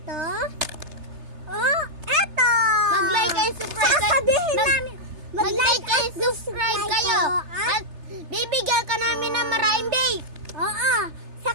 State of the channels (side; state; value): left; late; 3.3 ms